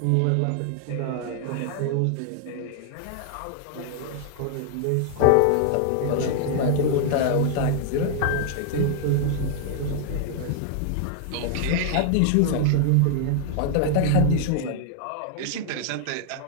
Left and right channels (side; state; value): both; different; correlation 0.00